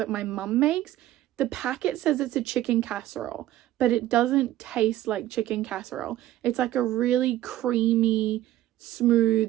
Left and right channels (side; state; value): left; quieter; 14.1 dB